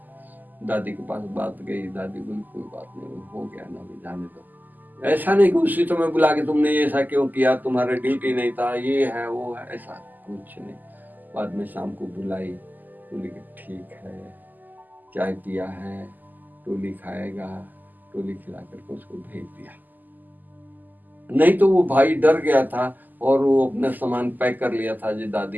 दादी के पास बात गई, दादी बोली कोई बात नहीं, हो गया ना, अभी जाने दो। ऐसा नहीं कि उसी समय बुला के तुमने ऐसा क्यों किया, तुम्हारा ड्यूटी नहीं था, ये है वो है, ऐसा कुछ नहीं। बाद में शाम को बुलाई, बोली कि ठीक है, चाय पिया है, टोली खाएगा, टोली खिला करके उसको भेज दिया। नहीं तो वो भाई डर गया था और वो अपना सामान पैक कर लिया था, जो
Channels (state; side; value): late; left; 0.085 ms